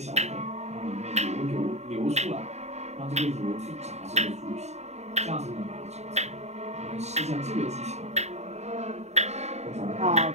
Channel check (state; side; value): late; left; 0.32 ms